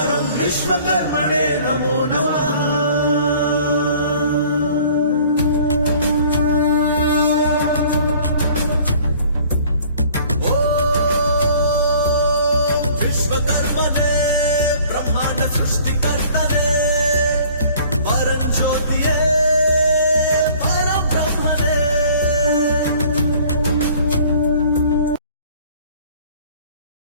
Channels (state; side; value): inverted; both; correlation -0.53